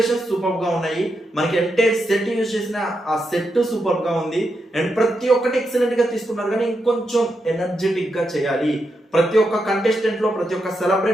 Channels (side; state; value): both; normal; correlation 0.85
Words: సూపర్ గా ఉన్నాయి. మనకి ఎంటైర్ సెట్ యూజ్ చేసిన ఆ సెట్ సూపర్ గా ఉంది అండ్ ప్రతి ఒక్కటి ఎక్సలెంట్ గా తీసుకున్నారు. కానీ ఇంకొంచెం ఎనర్జెటిక్ గా చేయాలి. ప్రతి ఒక్క కంటెస్టెంట్ లో, ప్రతి ఒక్క